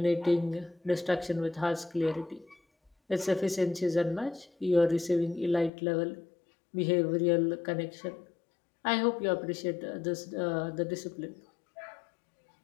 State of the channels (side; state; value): right; drops out; at 5.7 s